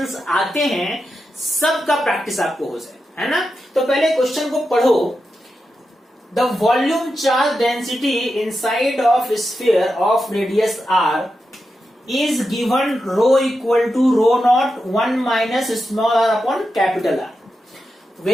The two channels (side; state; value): both; normal; correlation 0.89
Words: आते हैं सबका प्रैक्टिस आपको हो जाए, है ना। तो पहले क्वेश्चन को पढ़ो। The volume charge density inside of sphere of radius r is given rho equal to rho naught 1 minus small r upon capital R,